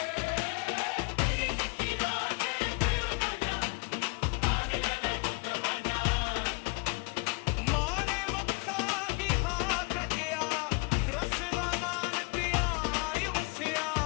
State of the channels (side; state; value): right; quieter; 29.5 dB